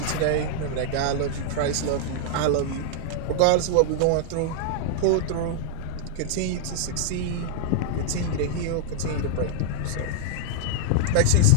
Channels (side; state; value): both; different; correlation -0.01